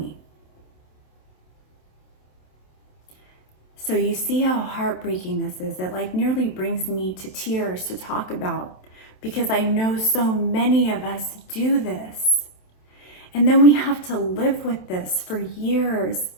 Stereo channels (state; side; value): late; right; 27 ms